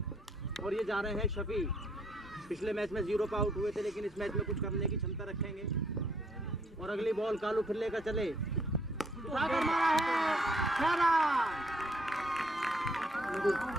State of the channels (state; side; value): normal; both; correlation 0.67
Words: और ये जा रहे हैं शफी। पिछले मैच में 0 पर आउट हुए थे लेकिन इस मैच में कुछ करने की क्षमता रखेंगे। और अगली बॉल कालू फिर लेकर चले, उठाकर मारा है 6 रन।